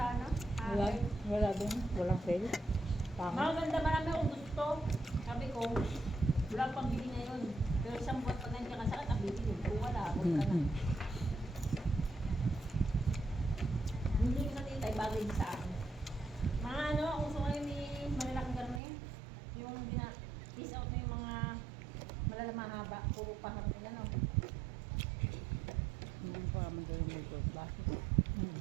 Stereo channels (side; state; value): left; drops out; at 18.8 s